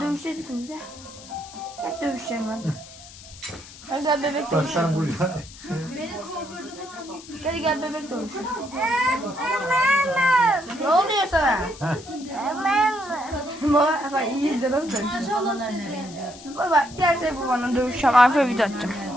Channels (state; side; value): noise; left; hiss, 18 dB below the sound